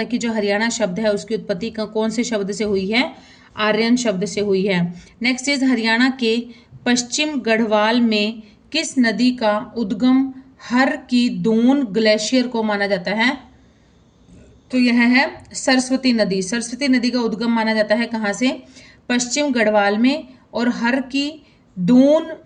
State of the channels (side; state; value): both; identical; correlation 1.00